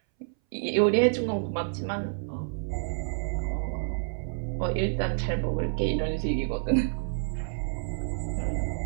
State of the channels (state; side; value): silent; left; 59 dB below the other